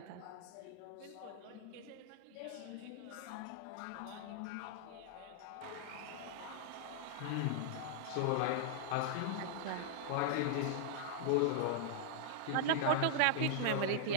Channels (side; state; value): both; different; correlation -0.01